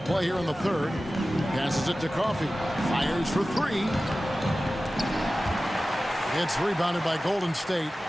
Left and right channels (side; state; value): both; normal; correlation 0.96